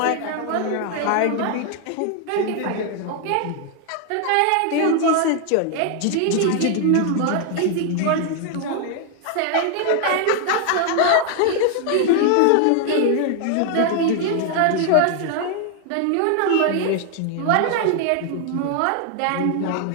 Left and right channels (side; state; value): both; different; correlation 0.00